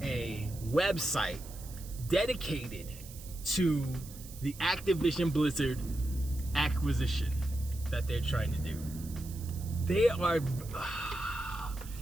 a website dedicated to the Activision Blizzard acquisition that they're trying to do. They are,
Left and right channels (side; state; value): right; noise; hiss, 17 dB below the sound